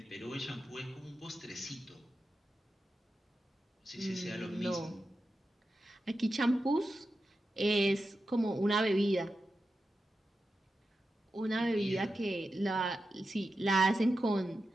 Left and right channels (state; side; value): normal; both; correlation 0.90